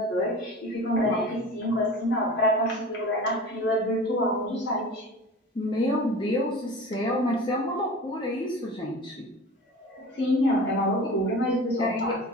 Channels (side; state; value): both; normal; correlation 0.37